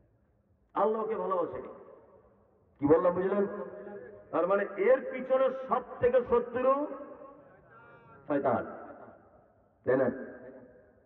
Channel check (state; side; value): identical; both; correlation 1.00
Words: আল্লাহকে ভালোবাসেনি। কি বললাম বুঝলেন? তার মানে এর পিছনে সব থেকে শত্রু শয়তান, তাই না?